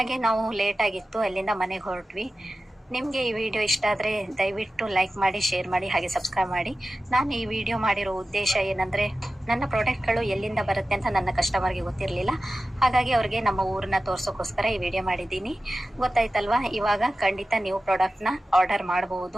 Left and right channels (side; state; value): both; normal; correlation 0.95